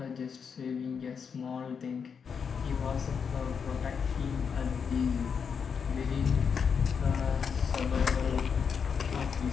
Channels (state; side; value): quieter; right; 6.4 dB